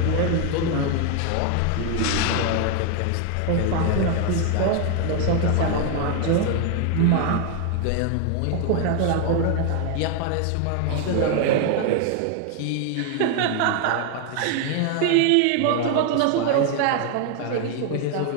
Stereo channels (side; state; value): both; different; correlation 0.01